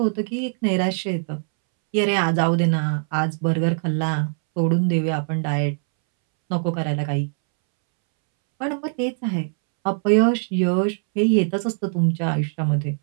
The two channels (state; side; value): silent; left; 64 dB below the other